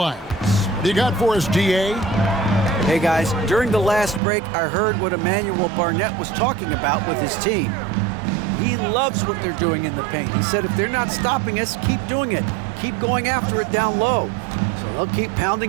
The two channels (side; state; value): left; drops out; at 4.2 s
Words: What do you got for us, DA? Hey guys, during the last break, I heard what Emmanuel Barnett was talking about with his team. He loves what they're doing in the paint. He said if they're not stopping us, keep doing it. Keep going after it down low. So they'll keep